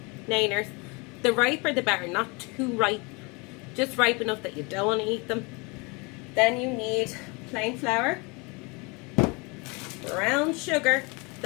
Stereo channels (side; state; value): right; quieter; 28.8 dB